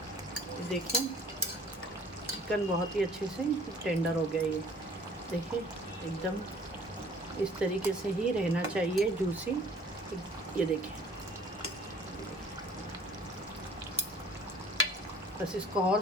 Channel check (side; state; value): both; normal; correlation 0.53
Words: देखें चिकन बहुत ही अच्छे से टेंडर हो गया। ये देखिए एकदम इस तरीके से ही रहना चाहिए, जूसी। ये देखें, बस इसको और